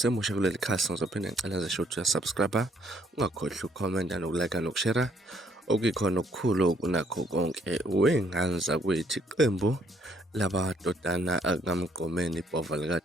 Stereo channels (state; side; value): normal; both; correlation 0.67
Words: kuleli khasi ngizophinde ngicela nje ukuthi uyasubscribe ungakhohlwa ukukhomenta nokulike nokushare okuyikhona okukhulu kunakho konke wey'ngane zakwethu. Iqembu lamadodana akamgqomeni ibhova